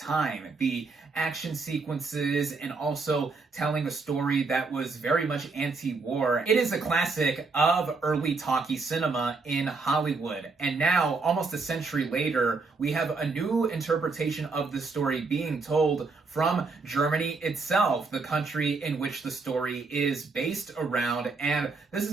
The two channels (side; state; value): left; quieter; 4.2 dB